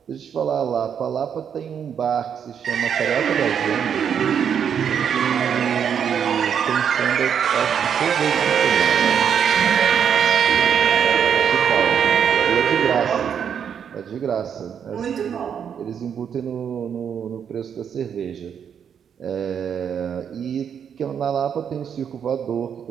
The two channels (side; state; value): left; quieter; 7.9 dB